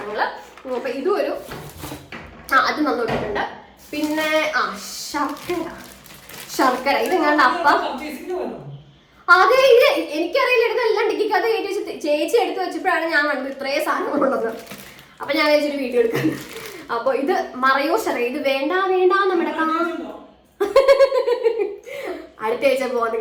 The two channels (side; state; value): both; identical; correlation 1.00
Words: അപ്പൊ ഇതും ഒരു അത് നന്നോട്ടിട്ടുണ്ട്. പിന്നെ ശർക്കര ഇതെങ്ങാണ്ട് അപ്പം. അതെ, ഇത് എനിക്കറിയില്ല, ഇതെല്ലാം ഡിക്കിക്കകത്ത് കയറ്റി വെച്ച് ചേച്ചി എടുത്ത് വെച്ചപ്പോഴാണ് ഞാൻ കണ്ടത് ഇത്രയും സാധനങ്ങളുള്ളത്. അപ്പൊ ഞാൻ വെച്ചൊരു വീഡിയോ എടുക്കുന്നത്. അപ്പൊ ഇത് മറയൂർ ശർക്കര. ഇത് വേണ്ട നമ്മുടെ അടുത്ത ആഴ്ച പോകുന്നത്